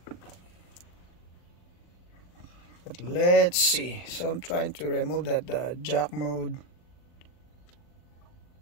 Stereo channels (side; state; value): right; late; 40 ms